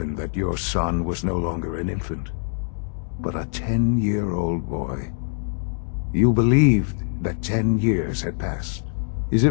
that your son was no longer an infant, but a 10-year-old boy. You believed that 10 years had passed. Is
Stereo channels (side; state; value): right; silent; digital silence